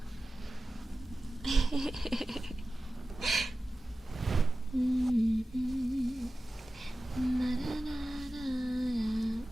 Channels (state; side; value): normal; both; correlation 0.95